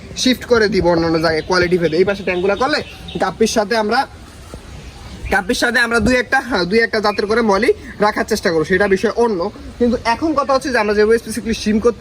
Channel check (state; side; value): identical; both; correlation 1.00